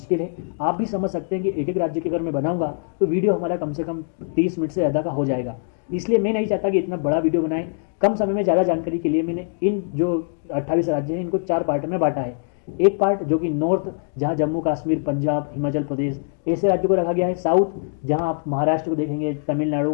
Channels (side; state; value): right; silent; 64 dB below the other